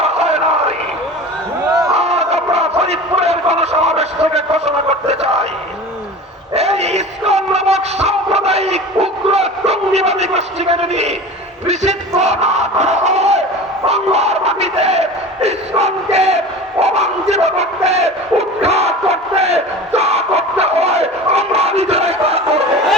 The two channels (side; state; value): both; normal; correlation 0.35